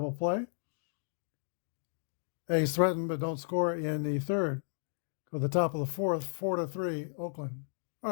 play. A's threatened but don't score in the third. Go to the top of the fourth, 4-3 Oakland. All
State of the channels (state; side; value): silent; right; digital silence